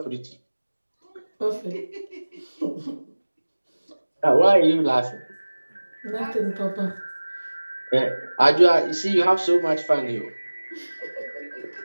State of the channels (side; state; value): both; inverted; correlation -1.00